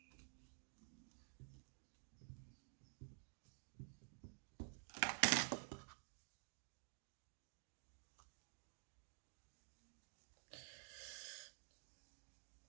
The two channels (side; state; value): left; silent; digital silence